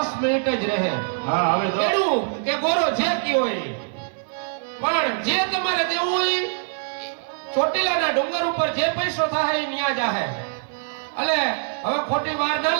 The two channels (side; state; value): left; silent; digital silence